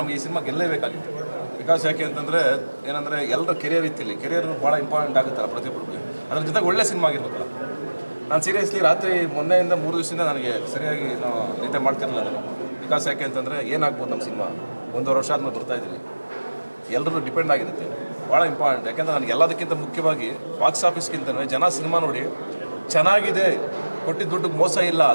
ನಮಗೆ ಈ ಸಿನಿಮಾ ಗೆಲ್ಲೇಬೇಕಾಗಿತ್ತು. ಬಿಕಾಸ್ ಯಾಕೆ ಅಂತಂದರೆ ಏನಂದರೆ ಎಲ್ಲರ ಕೆರಿಯರ್ ಇತ್ತಿಲ್ಲಿ, ಕೆರಿಯರ್ ಭಾಳ ಇಂಪಾರ್ಟೆಂಟ್ ಆಗುತ್ತಲ್ಲ ಪ್ರತಿಯೊಬ್ಬರಿಗೆ. ಅದ್ರ ಜೊತೆಗೆ ಒಳ್ಳೆ ಸಿನಿಮಾ ಆಗಿರ್ಬೇಕಲ್ಲ. ನಾನು ಸೀರಿಯಸ್ಲಿ ರಾತ್ರಿ ಮೊನ್ನೆಯಿಂದ 3 ದಿವಸದಿಂದ ನನಗೆ ಸರಿಯಾಗಿ ನಾವು ನಿದ್ದೆ ಮಾಡ್ತಿರಲಿಲ್ಲ ನಾನು. ಬಿಕಾಸ್ ಯಾಕೆ ಅಂತಂದರೆ ಏನಾಗ್ಬೋದು ನಮ್ಮ ಸಿನಿಮಾ 1.5 ವರ್ಷ ಆದ್ಮೇಲೆ ಬರ್ತಾಯಿದ್ದೀವಿ, ಎಲ್ಲರೂ ಡಿಪೆಂಡ್ ಆಗಿರುತ್ತೆ, ಭಾಳ ಇಂಪಾರ್ಟೆಂಟ್. ಯಾಕೆಂದರೆ ನನಗೆ ಎಲ್ಲದಕ್ಕಿಂತ ಮುಖ್ಯವಾಗಿ ಬಾಕ್ಸ್ ಆಫೀಸ್ಗಿಂತಲೇ ಜನ ಸಿನಿಮಾ ನೋಡಿ ಚೆನ್ನಾಗಿದೆ, ಕೊಟ್ಟಿದ್ದ ದುಡ್ಡು ಮೋಸ ಇಲ್ಲ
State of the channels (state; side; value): inverted; both; correlation -1.00